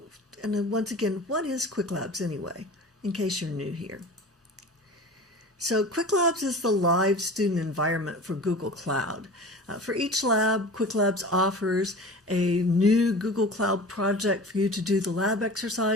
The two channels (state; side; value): normal; both; correlation 0.37